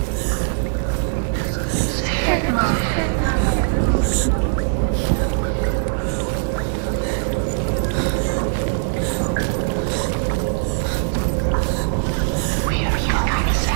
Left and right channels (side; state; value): left; silent; 57 dB below the other